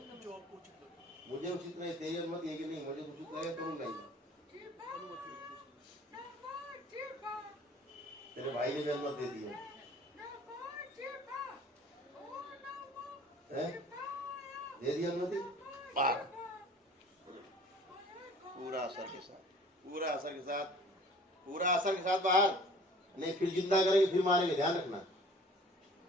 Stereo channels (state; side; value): normal; both; correlation 0.49